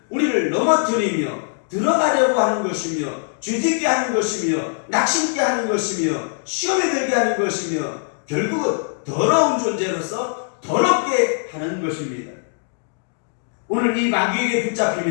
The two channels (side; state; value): right; silent; digital silence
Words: 우리를 넘어뜨리며 들어가려고 하는 것이며 죄짓게 하는 것이며 낙심게 하는 것이며 시험에 들게 하는 것이며 결국은 더러운 존재로서 더럽게 하는 것입니다. 오늘 이 마귀에게